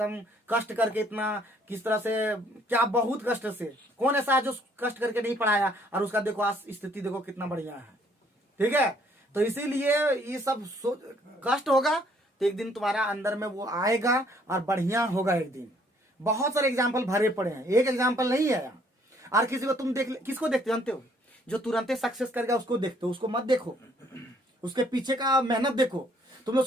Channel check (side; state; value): both; normal; correlation 0.64